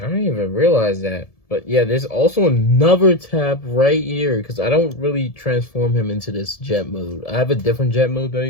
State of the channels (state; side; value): late; right; 1.7 ms